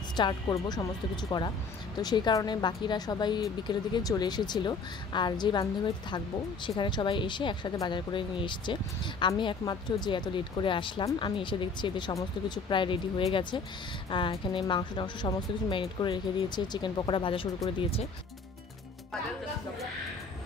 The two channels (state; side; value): quieter; right; 4.4 dB